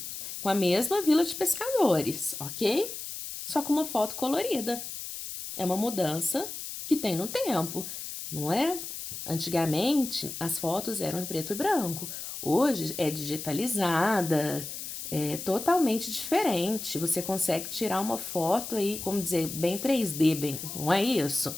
com a mesma vila de pescadores, ok? Só com uma foto colorida. É uma mudança que tem no tempo, não é? Antigamente, as fotos eram em preto e branco. Hoje é digitalizada, é totalmente diferente. Você consegue tirar uma foto aí, como dizer, bem 3D, bem, não é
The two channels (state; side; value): noise; left; hiss, 8 dB below the sound